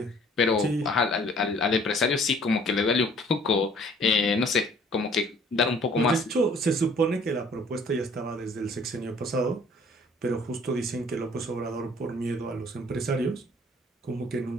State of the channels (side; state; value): both; normal; correlation 0.56